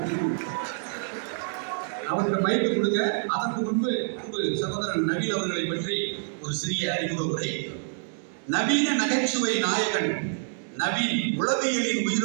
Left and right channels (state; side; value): silent; left; digital silence